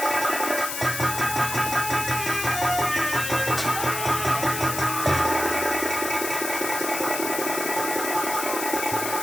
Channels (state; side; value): noise; left; hiss, 4 dB below the sound